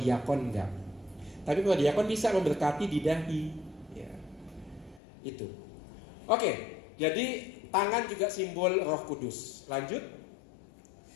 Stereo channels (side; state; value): right; drops out; at 5.0 s